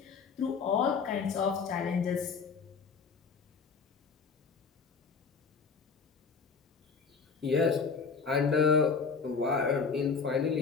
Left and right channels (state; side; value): quieter; right; 5.3 dB